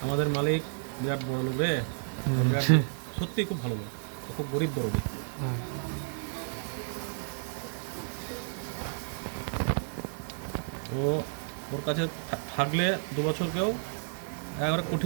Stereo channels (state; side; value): silent; left; 57 dB below the other